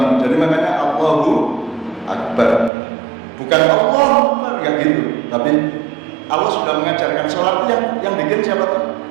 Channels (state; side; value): drops out; left; at 2.7 s